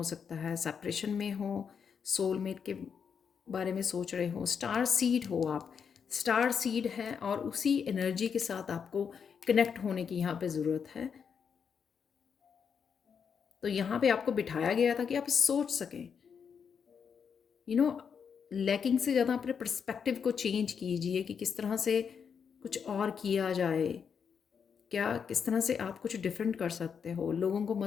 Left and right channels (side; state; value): right; quieter; 6.8 dB